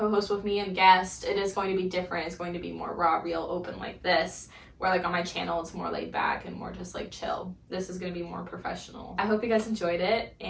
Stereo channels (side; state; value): both; identical; correlation 1.00